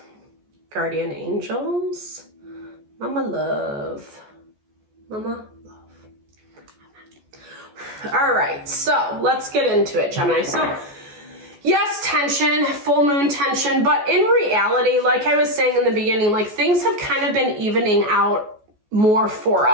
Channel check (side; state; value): left; late; 14 ms